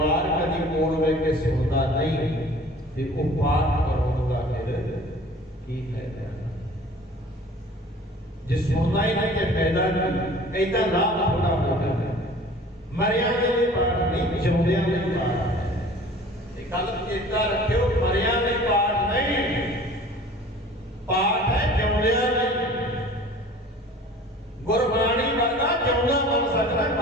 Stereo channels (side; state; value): both; normal; correlation 0.46